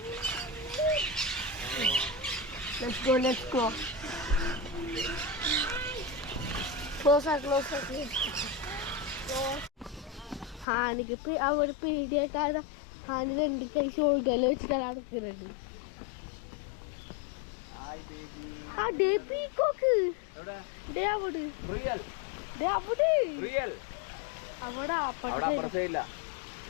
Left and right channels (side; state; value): right; drops out; at 10.7 s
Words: Let's go. Closer. ഹാനിക്ക് അവിടെ പേടിയായിട്ടാണ് ഹാനി 2 കൈ ഷോൾഡറിൽ വെച്ചിട്ടാണ് നടക്കുന്നത്. ആ ഡേ പീക്കോക്ക് ഡേ അവിടെ റിയൽ ഡേ അവിടെ റിയൽ അവിടെ അവിടെ അപ്പുറത്തേ ഇല്ല.